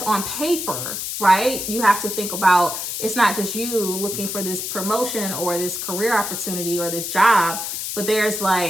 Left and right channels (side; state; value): left; noise; hiss, 4 dB below the sound